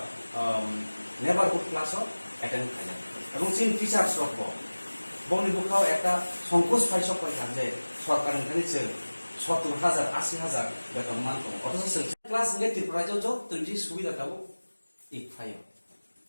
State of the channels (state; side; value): inverted; both; correlation -1.00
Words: नेबारहुड क्लास अटेंड खाया এবং চিন টিচার্স রব বংনি বুখাও একটা সংকোচ পাইছক পাইখান যে সরকারनिफ्राय जों 70,000 80,000 বেতন মানতো অথচ जों ক্লাস নে ত্রিপুরাজो যতই সুবিধা দাও